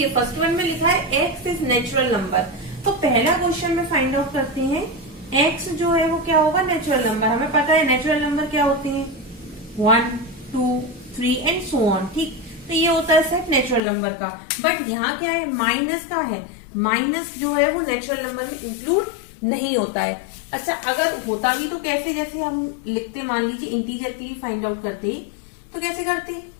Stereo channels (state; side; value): drops out; right; at 13.8 s